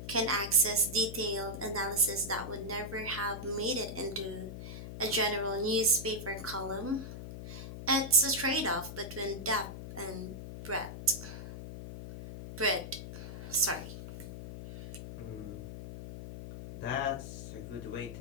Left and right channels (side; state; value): left; noise; hum, 9 dB below the sound